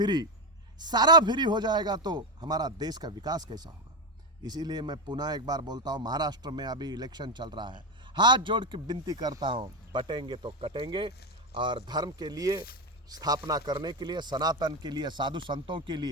सारा फ्री हो जाएगा तो हमारा देश का विकास कैसा होगा। इसीलिए मैं पुनः एक बार बोलता हूँ, महाराष्ट्र में अभी इलेक्शन चल रहा है, हाथ जोड़ के विनती करता हूँ, बटेंगे तो कटेंगे, और धर्म के लिए स्थापना करने के लिए, सनातन के लिए, साधु संतों के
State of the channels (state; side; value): normal; both; correlation 0.12